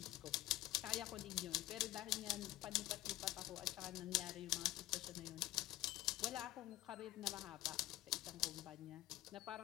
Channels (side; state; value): right; quieter; 16.2 dB